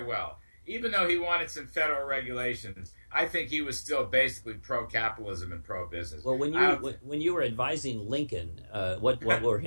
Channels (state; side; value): inverted; both; correlation -1.00